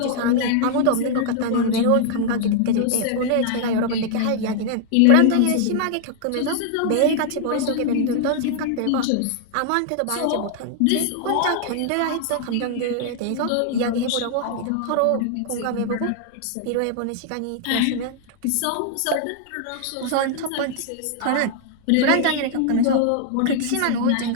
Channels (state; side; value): different; both; correlation 0.00